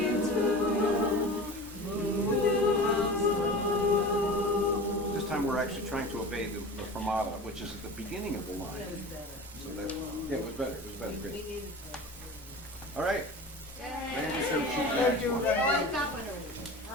tune, like This time we're actually trying to obey the fermata, which is at the beginning of the line. So that, yeah, it was better. It was better. Great. All right. Randy said she's back. Oh, I got one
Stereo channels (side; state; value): both; normal; correlation 0.35